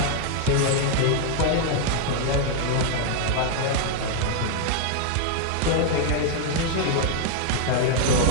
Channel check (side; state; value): both; different; correlation 0.00